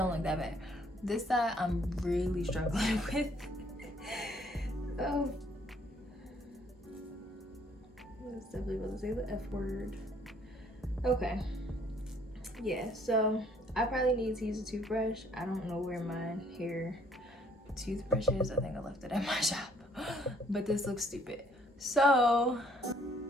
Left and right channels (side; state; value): both; normal; correlation 0.63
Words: look that bad. This side I'm really struggling with. Oh, I was definitely about to say the F word. Okay, yeah, so I probably need to use a toothbrush. I don't know where my hair toothbrush is. I think I left it at my shop. But this looks stupid. So